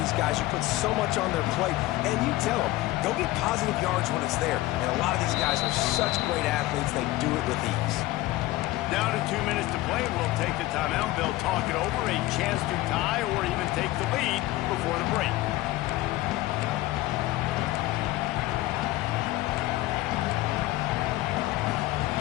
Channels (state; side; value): quieter; right; 17.7 dB